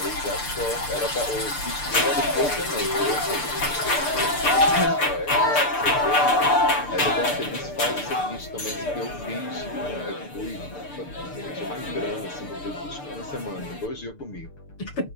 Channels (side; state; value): right; late; 6.8 ms